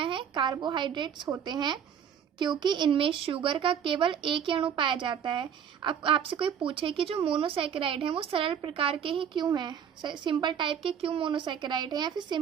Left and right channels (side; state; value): left; quieter; 8.3 dB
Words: हैं? कार्बोहाइड्रेट्स होते हैं, क्योंकि इनमें शुगर का केवल एक ही अणु पाया जाता है। अब आपसे कोई पूछे कि जो मोनोसैकेराइड हैं वो सरल प्रकार के ही क्यों हैं, सिंपल टाइप के क्यों मोनोसैकेराइड हैं, या फिर